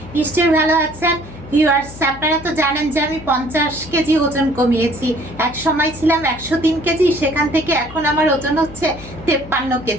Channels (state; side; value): noise; left; hum, 16 dB below the sound